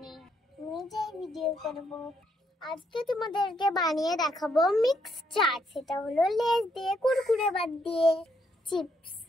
নিজেই ভিডিও করব। আজকে তোমাদেরকে বানিয়ে দেখাবো মিক্স চাট। সেটা হলো লেস দিয়ে, কুরকুরে বাদ দিয়ে, চিপস।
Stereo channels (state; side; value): normal; both; correlation 0.74